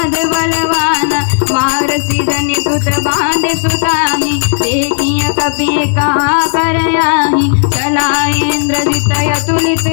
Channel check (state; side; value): silent; right; digital silence